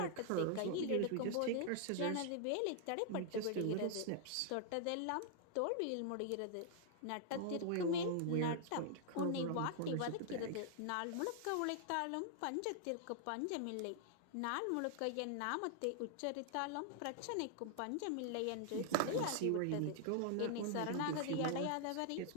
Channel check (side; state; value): both; different; correlation -0.01